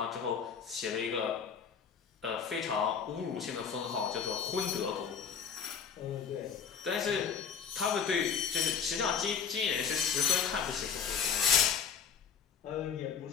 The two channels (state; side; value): quieter; right; 6.8 dB